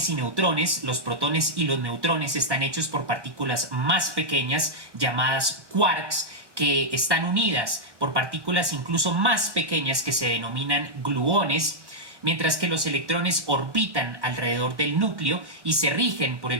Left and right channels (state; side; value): late; left; 1.1 ms